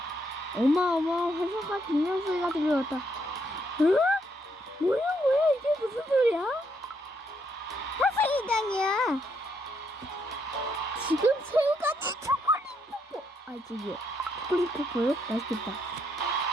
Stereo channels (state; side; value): normal; both; correlation 0.75